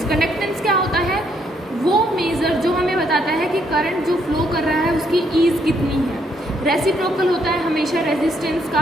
कंडक्टेंस क्या होता है, वो मेज़र जो हमें बताता है कि करंट जो फ्लो कर रहा है उसकी ईज कितनी है। रेसिप्रोकल होता है हमेशा रेजिस्टेंस का,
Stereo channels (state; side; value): normal; both; correlation 0.72